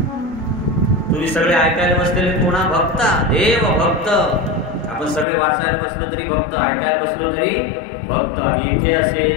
तुम्ही सगळे ऐकायला बसलेले कोणा? भक्ता. देव, भक्त. आपण सगळे वाचायला बसलो तरी भक्त, ऐकायला बसलो तरी भक्त. आणि इथे असे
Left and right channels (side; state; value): right; drops out; at 5.2 s